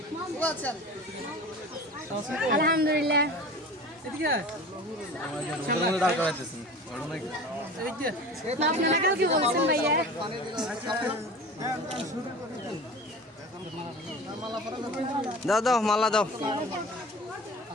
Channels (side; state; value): both; normal; correlation 0.37